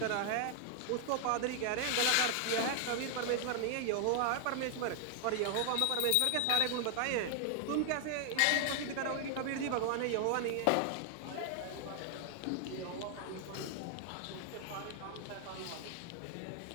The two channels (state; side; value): different; both; correlation 0.00